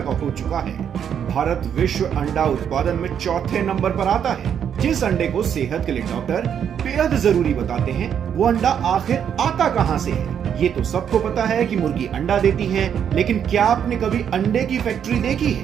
हो चुका है। भारत विश्व अंडा उत्पादन में चौथे नंबर पर आता है। जिस अंडे को सेहत के लिए डॉक्टर बेहद जरूरी बताते हैं, वो अंडा आखिर आता कहां से है? ये तो सबको पता है कि मुर्गी अंडा देती है, लेकिन क्या आपने कभी अंडे की फैक्ट्री देखी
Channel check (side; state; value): left; quieter; 8.5 dB